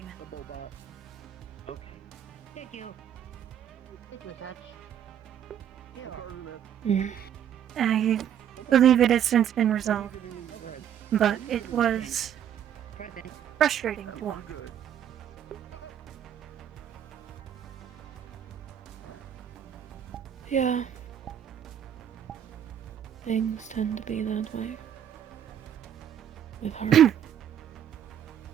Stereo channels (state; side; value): quieter; left; 9.6 dB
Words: Thank you. Thank you, Satch. I believe it has since been resolved, but it was frustrating to watch. Yeah. Things tend to be that way. With